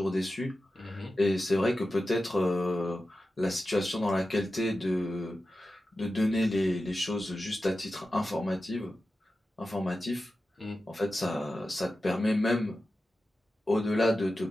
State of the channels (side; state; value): both; normal; correlation 0.92